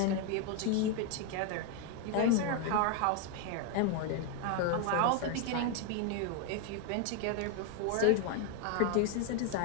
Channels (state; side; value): different; both; correlation 0.01